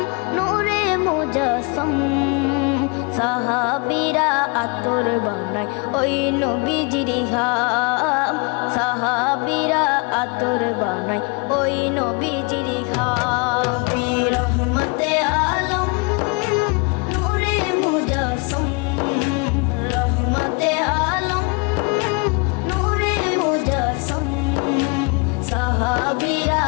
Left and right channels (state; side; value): quieter; right; 30.8 dB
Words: नूरे मुजस्सम। साहाबीरा आतর বানায় ওই নবীজির ঘাম, সাহাবীরা আতর বানায় ওই নবীজির ঘাম। রহমতে আলম নূরে মুজস্সম, রহমতে আলম নূরে মুজস্সম। সাহাবীরা